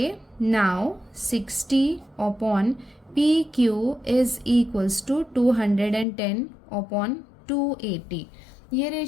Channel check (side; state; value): right; drops out; at 6.1 s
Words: now 60 upon P Q is equals to 210 upon 280. ये